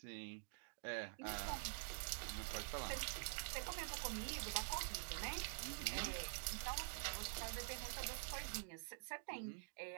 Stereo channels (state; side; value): silent; left; digital silence